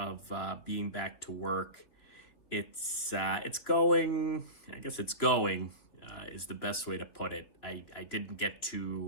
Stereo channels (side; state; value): right; late; 3.0 ms